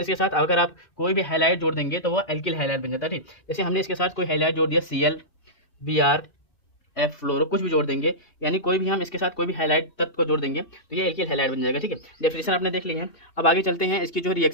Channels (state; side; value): late; right; 2.6 ms